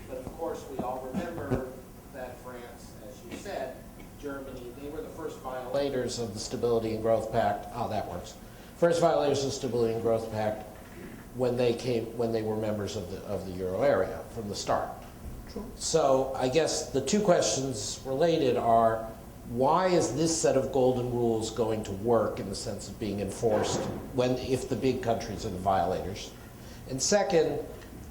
but of course we all remember that France, as you said, Germany, they were the first violators of the Stability and Growth Pact. Oh, that works. First violators of the Stability and Growth Pact when they were members of the euro area from the start. True. So I guess the two questions related are, why is this set of golden rules going to work in the sense of being enforced if the big countries are the violators? And second,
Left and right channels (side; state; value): both; identical; correlation 1.00